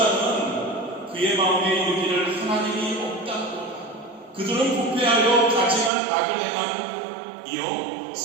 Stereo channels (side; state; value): left; drops out; at 5.9 s